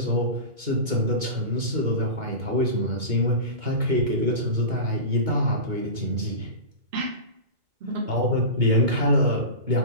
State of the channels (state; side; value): late; left; 2.2 ms